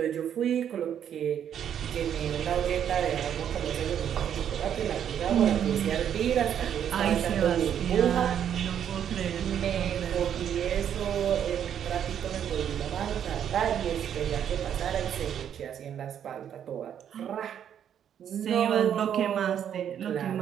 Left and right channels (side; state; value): left; quieter; 9.2 dB